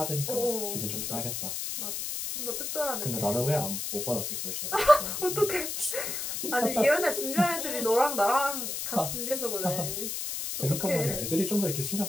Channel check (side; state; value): left; noise; hiss, 4 dB below the sound